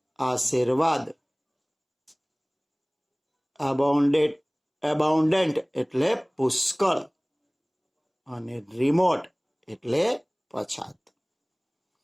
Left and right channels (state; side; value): identical; both; correlation 1.00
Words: આશીર્વાદ, એબાઉન્ડન્ટ એટલે પુષ્કળ, અને રિમોટ એટલે પછાત.